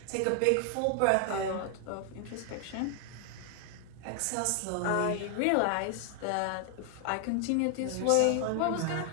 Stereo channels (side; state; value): both; different; correlation 0.00